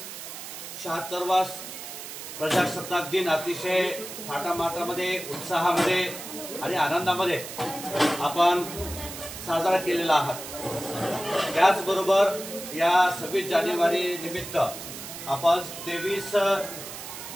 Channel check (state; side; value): noise; right; hiss, 10 dB below the sound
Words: 76वा प्रजासत्ताक दिन अतिशय थाटामाटामध्ये, उत्साहामध्ये आणि आनंदामध्ये आपण साजरा केलेला आहात. त्याचबरोबर या 26 जानेवारी निमित्त आपण 23